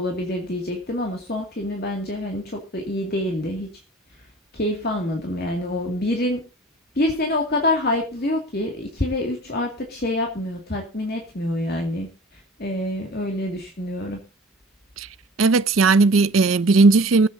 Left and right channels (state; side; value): normal; both; correlation 0.45